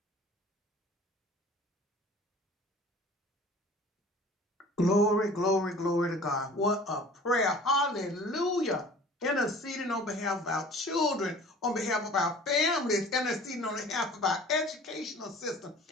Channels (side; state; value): both; normal; correlation 0.46